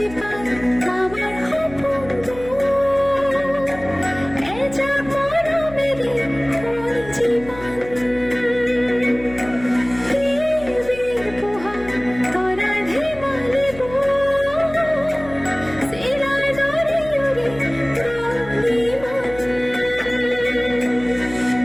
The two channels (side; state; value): left; noise; hum, 17 dB below the sound